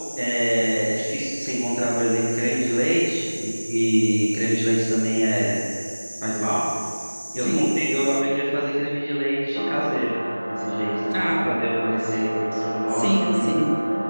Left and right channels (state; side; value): inverted; both; correlation -1.00